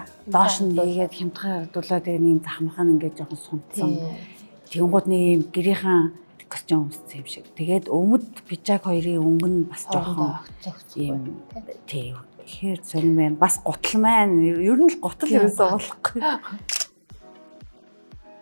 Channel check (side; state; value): both; inverted; correlation -1.00